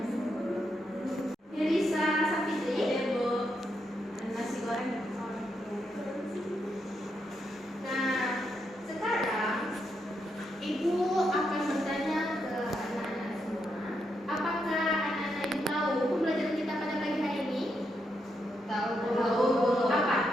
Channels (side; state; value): both; normal; correlation 0.81